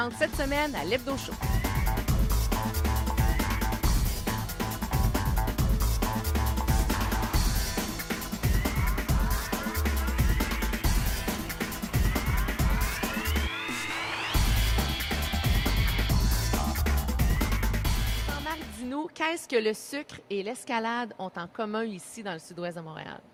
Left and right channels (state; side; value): identical; both; correlation 1.00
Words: cette semaine à l'Hebdo Show. Qu'est-ce que le sucre et l'escalade ont en commun ici dans le sud-ouest de Montréal?